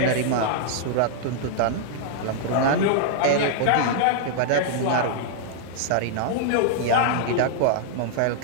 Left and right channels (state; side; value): different; both; correlation -0.01